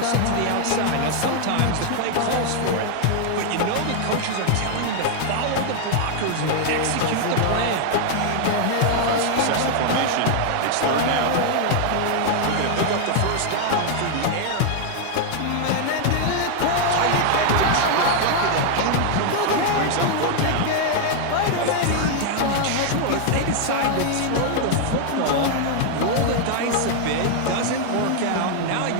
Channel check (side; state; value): both; different; correlation 0.00